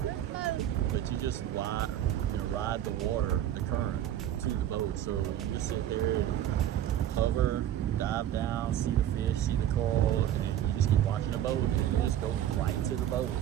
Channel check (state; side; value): quieter; left; 11.5 dB